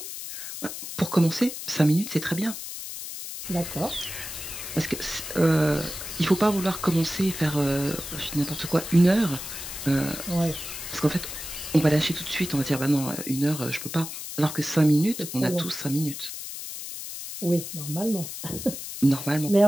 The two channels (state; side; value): noise; left; hiss, 8 dB below the sound